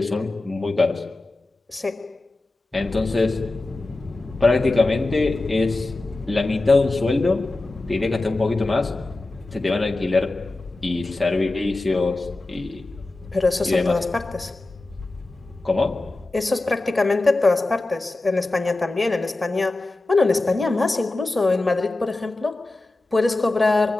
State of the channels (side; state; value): right; quieter; 3.0 dB